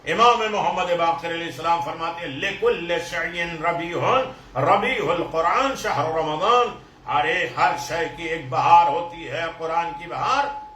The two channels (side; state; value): both; identical; correlation 1.00